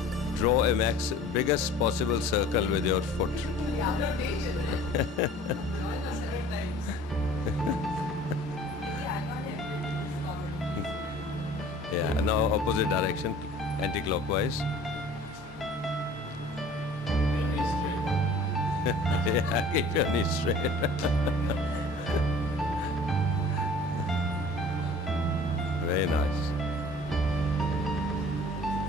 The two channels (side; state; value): both; normal; correlation 0.48